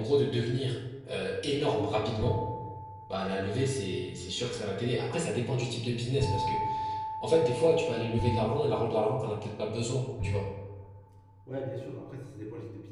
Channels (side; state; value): both; identical; correlation 1.00